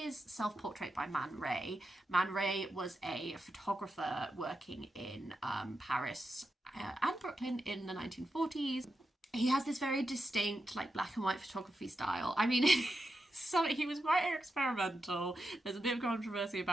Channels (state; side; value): normal; both; correlation 0.88